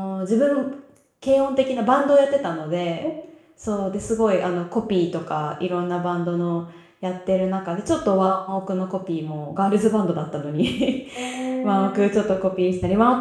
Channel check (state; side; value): identical; both; correlation 1.00